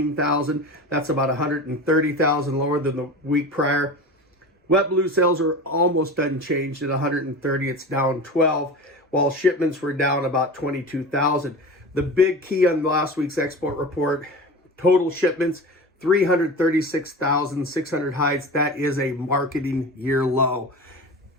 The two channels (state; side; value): normal; both; correlation 0.31